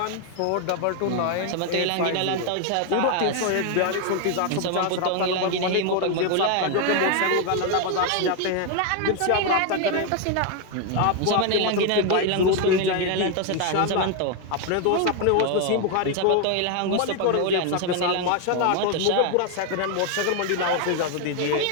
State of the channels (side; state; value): both; different; correlation 0.01